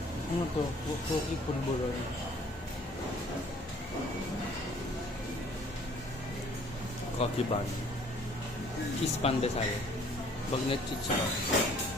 Ano to? Cookie pulburon. Coffee bun. Cheese pandesal. Bagnet chicha.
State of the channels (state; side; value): normal; both; correlation 0.56